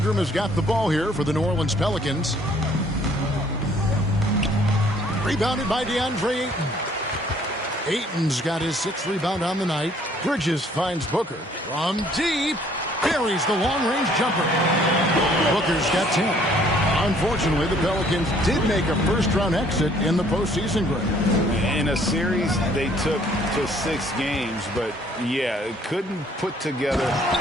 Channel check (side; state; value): both; normal; correlation 0.60